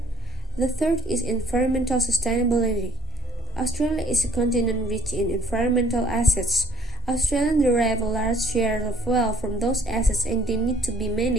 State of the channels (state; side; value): normal; both; correlation 0.56